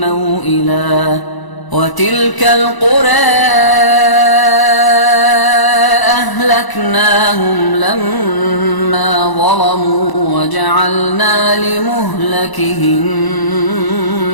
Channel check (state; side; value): late; right; 1.0 ms